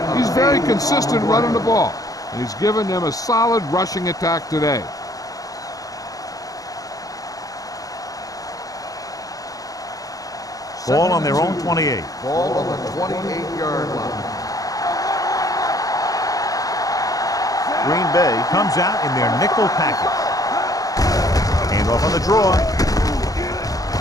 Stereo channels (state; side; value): late; right; 0.17 ms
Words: He's very consistent running the ball, and he's given them a solid rushing attack today. Ball on their own 28. Ball on the 28-yard line. Green Bay comes out in their nickel package. Hand off on the draw.